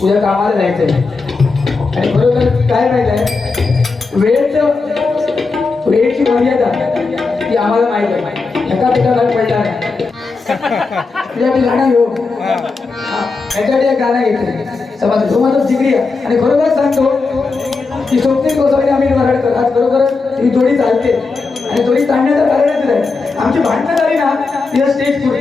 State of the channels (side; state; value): right; quieter; 4.2 dB